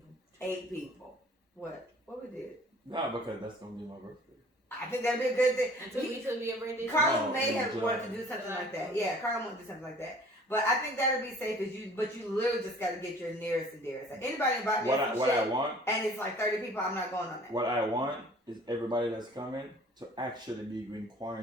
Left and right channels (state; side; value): normal; both; correlation 0.51